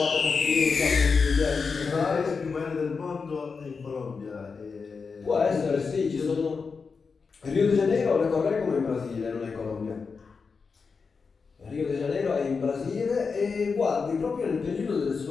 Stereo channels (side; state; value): right; quieter; 5.1 dB